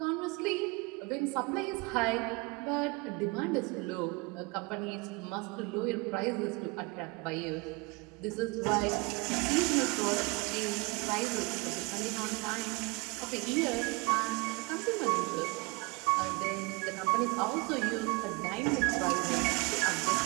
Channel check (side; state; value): left; quieter; 26.7 dB